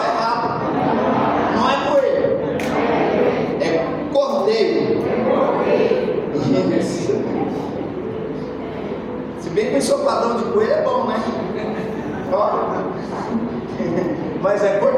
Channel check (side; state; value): both; identical; correlation 1.00